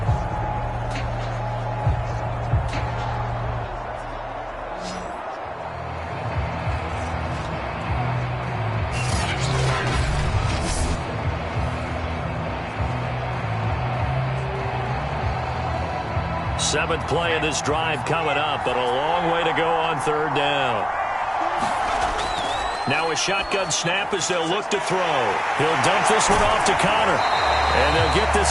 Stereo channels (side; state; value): both; identical; correlation 1.00